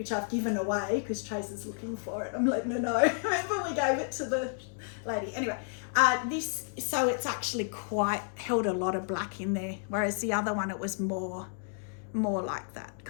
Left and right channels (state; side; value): silent; right; 57 dB below the other